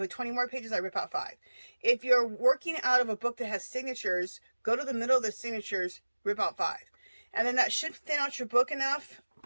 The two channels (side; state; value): both; inverted; correlation -1.00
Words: 20 more pages, I rip out 5. If you're working out of a book that has signatures, go to the middle of the signatures, rip out 5. And then that should thin out your book enough